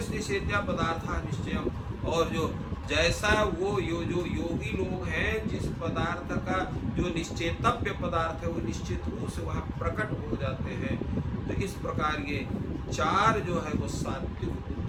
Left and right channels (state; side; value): identical; both; correlation 1.00